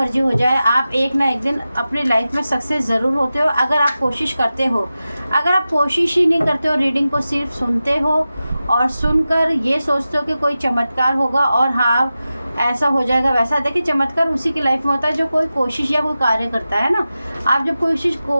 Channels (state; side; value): inverted; both; correlation -0.93